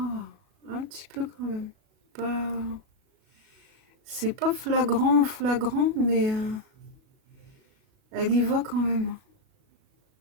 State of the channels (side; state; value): left; late; 37 ms